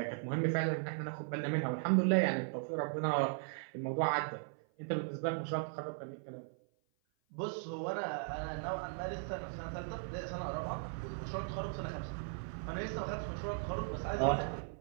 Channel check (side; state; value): left; silent; 53 dB below the other